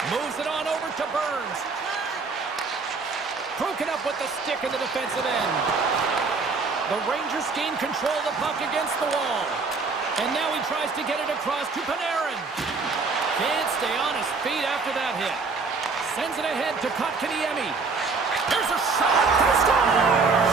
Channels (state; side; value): quieter; left; 4.4 dB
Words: Moves it on over to Burns. Broken up with the stick in the defensive end. The Rangers gain control of the puck against the wall. And now he tries to get it across to Panarin. Can't stay on his feet after that hit. Sends it ahead to Kotkaniemi. There's a shot. They score!